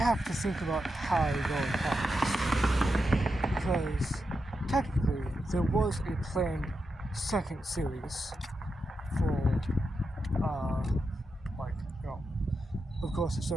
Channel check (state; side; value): normal; both; correlation 0.87